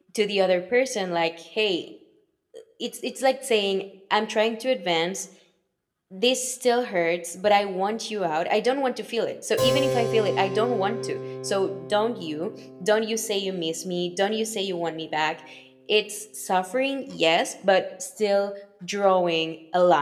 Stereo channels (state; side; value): identical; both; correlation 1.00